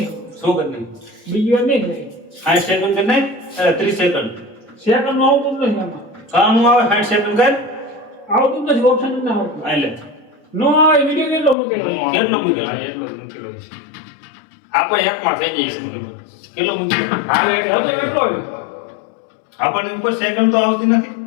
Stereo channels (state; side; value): drops out; right; at 11.6 s